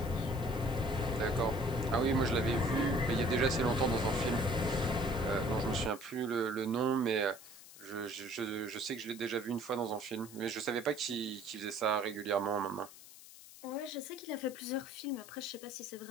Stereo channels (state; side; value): noise; left; hiss, 18 dB below the sound